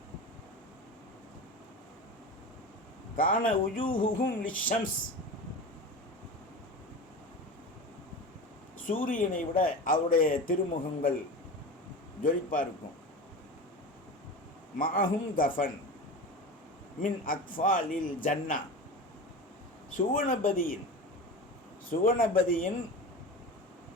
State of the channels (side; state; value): both; normal; correlation 0.29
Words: கான உஜூஹுஹும் லிஷம்ஸ், சூரியனை விட அவருடைய திருமுகங்கள் ஜொலிப்பா இருக்கும். மாஹும் கஃபன் மின் அக்ஃபாலில் ஜன்னா, சுவனபதியின்